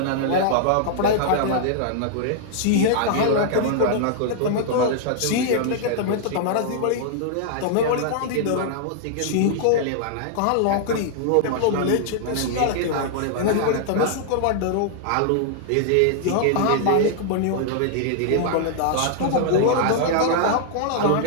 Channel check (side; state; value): both; different; correlation -0.01